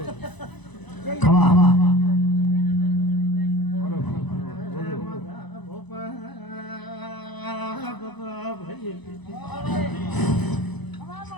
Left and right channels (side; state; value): right; late; 1.0 ms